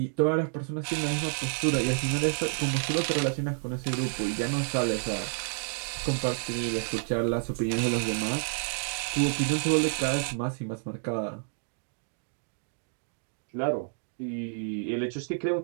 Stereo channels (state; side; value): silent; left; digital silence